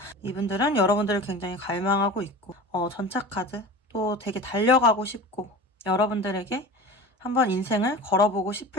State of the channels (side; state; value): both; normal; correlation 0.34